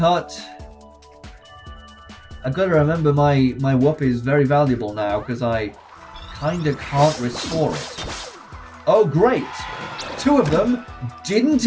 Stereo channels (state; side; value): identical; both; correlation 1.00